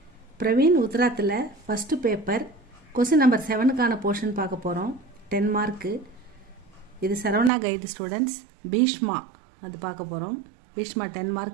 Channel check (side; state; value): left; drops out; at 7.5 s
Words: பிரவீன் உத்ராத்தில் ஃபஸ்ட்டு பேப்பர் கொஸ்டின் நம்பர் 7க்கான போர்ஷன் பார்க்க போகிறோம். 10 மார்க்கு. இது சரவணா கைடு ஸ்டூடெண்ட்ஸ். பீஷ்மா அது பார்க்க போகிறோம். பீஷ்மா 10